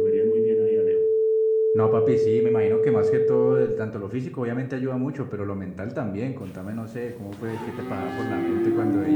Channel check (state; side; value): identical; both; correlation 1.00